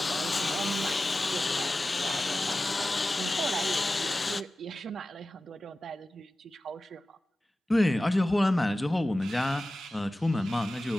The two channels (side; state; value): both; normal; correlation 0.95